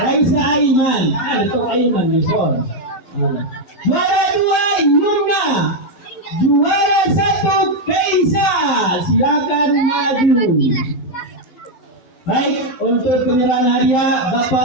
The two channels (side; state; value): right; late; 11 ms